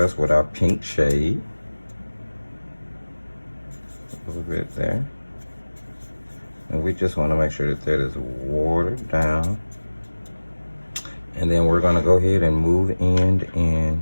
us with our pink shade. A little bit there. And we just wanna make sure that that is watered down. And then we're gonna go ahead and move in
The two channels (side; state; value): both; inverted; correlation -1.00